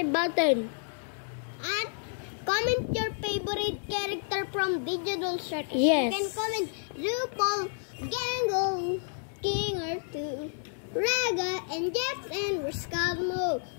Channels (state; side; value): silent; right; 58 dB below the other